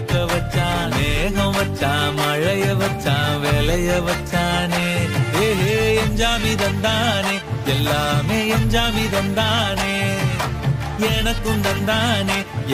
வச்சான் மேகம் வச்சான் மழைய வச்சான் விளைய வச்சானே ஏஹே எஞ்சாமி தந்தானே எல்லாமே எஞ்சாமி தந்தானே எனக்கும் தந்தானே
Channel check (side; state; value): both; identical; correlation 1.00